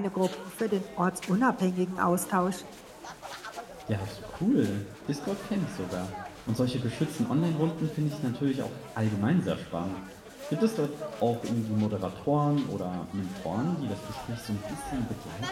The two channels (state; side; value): identical; both; correlation 1.00